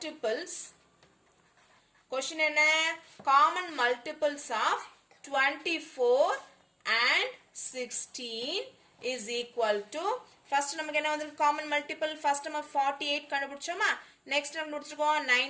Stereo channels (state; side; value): identical; both; correlation 1.00